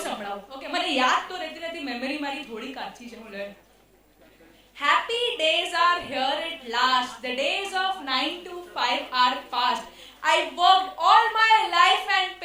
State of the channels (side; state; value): both; identical; correlation 1.00